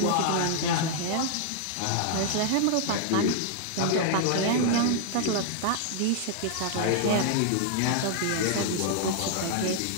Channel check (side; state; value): both; different; correlation 0.00